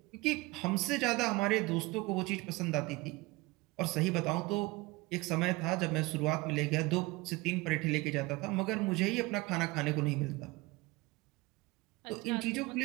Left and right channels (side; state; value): left; quieter; 22.5 dB